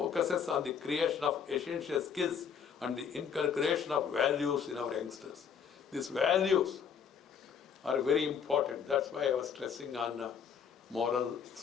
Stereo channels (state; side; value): quieter; right; 7.2 dB